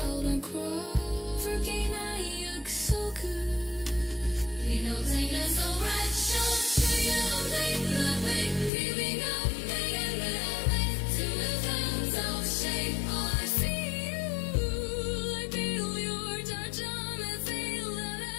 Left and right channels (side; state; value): right; drops out; at 8.7 s